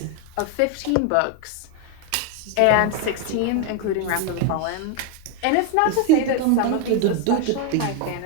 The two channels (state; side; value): different; both; correlation 0.01